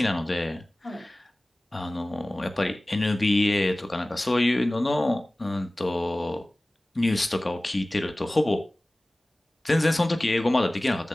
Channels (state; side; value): normal; both; correlation 0.98